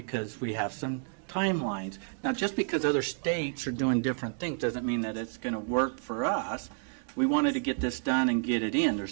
we have some timelines. Now, just because other states are doing different things doesn't mean that it's going to work for us. We wanted to get this done and get it in.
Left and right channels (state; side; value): silent; left; 58 dB below the other